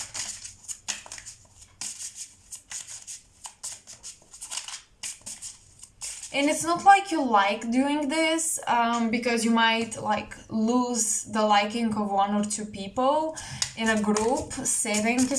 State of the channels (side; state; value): both; identical; correlation 1.00